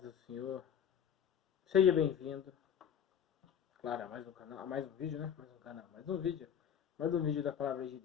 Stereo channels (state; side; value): quieter; right; 8.6 dB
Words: do Senhor. Seja bem-vindo. Claro, a mais um canal, a mais um vídeo, né? Mais um canal, mais um vídeo da palavra de